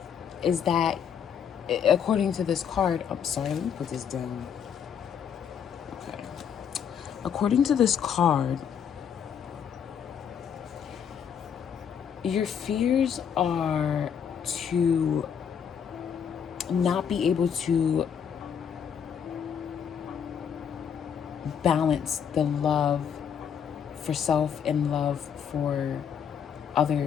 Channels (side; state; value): right; quieter; 7.8 dB